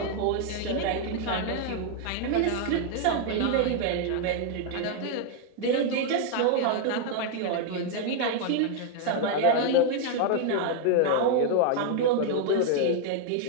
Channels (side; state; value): both; different; correlation 0.00